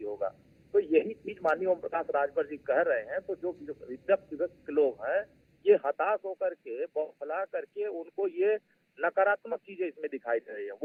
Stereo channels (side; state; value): both; identical; correlation 1.00